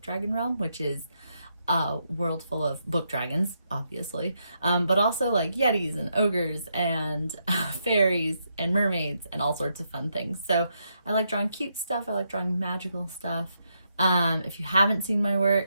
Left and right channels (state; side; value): inverted; both; correlation -0.80